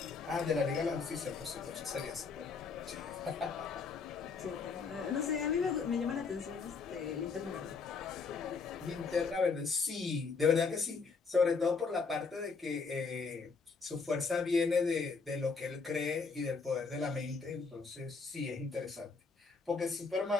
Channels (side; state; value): right; quieter; 4.8 dB